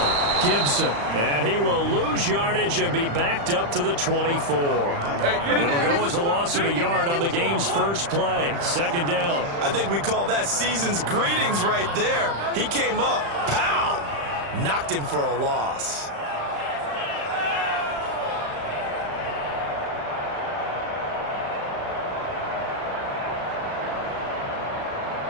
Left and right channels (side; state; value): left; late; 35 ms